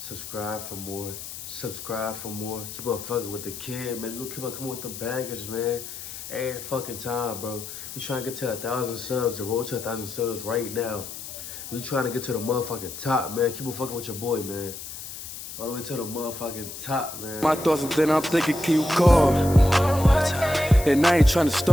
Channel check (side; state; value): left; noise; hiss, 10 dB below the sound